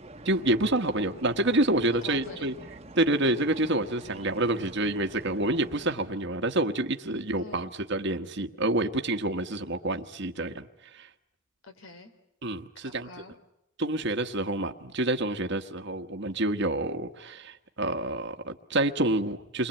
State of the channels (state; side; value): normal; both; correlation 0.17